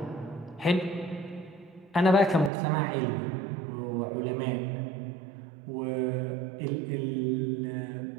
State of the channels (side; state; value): left; drops out; at 2.5 s